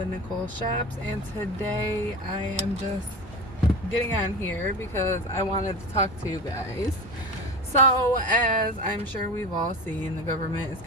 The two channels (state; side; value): normal; both; correlation 0.28